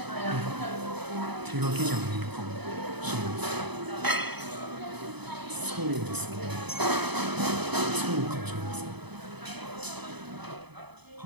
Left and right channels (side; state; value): left; late; 0.99 ms